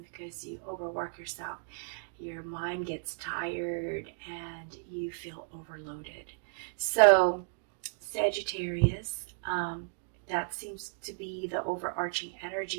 because you overwork yourself, your mind gets tired and you feel overloaded. So, Sagittarius, that seems to be the overarching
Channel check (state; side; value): silent; left; digital silence